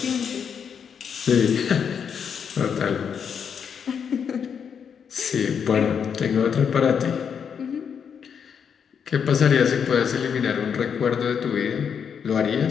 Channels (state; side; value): quieter; right; 7.2 dB